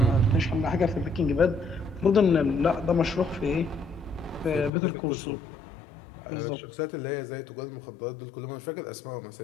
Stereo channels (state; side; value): drops out; right; at 4.7 s